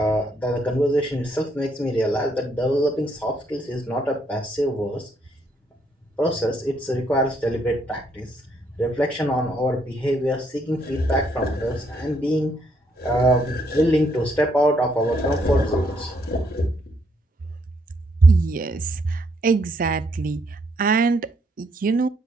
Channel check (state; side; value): normal; both; correlation 0.72